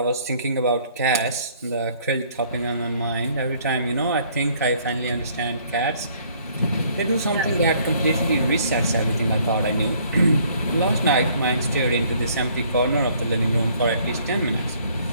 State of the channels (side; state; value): both; inverted; correlation -0.61